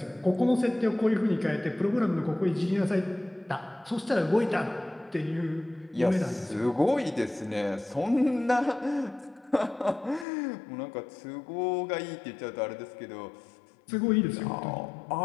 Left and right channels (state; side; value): drops out; right; at 10.2 s